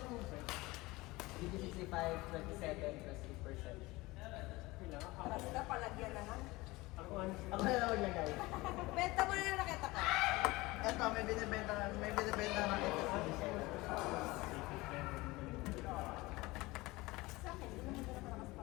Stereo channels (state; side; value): quieter; right; 21.3 dB